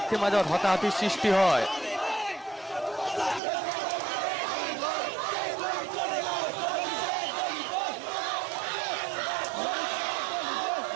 মাজত হতাহতিৰ সৃষ্টি হয়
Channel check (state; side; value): drops out; left; at 3.4 s